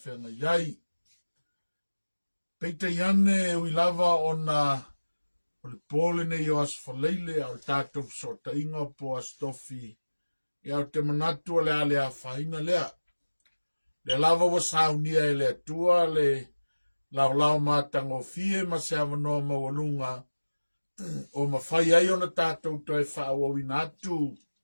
iai. Peita iane ui lava ona o le pole nei o asfaleile au tātou sota inga po astofi. Ia o te manatu o le ale a whaina lea. Le lava wa saunia e le atua le lau mātango fie ma se awanoa mawalunga. O mawhai ai ona tātou toi whaawawina atu.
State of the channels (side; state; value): both; inverted; correlation -1.00